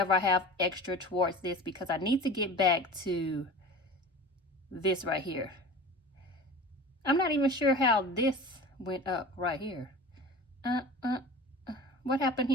I have extra towards this because I need to get back to this right here. I'm not even sure how this went up right here. What happened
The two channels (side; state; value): both; normal; correlation 0.36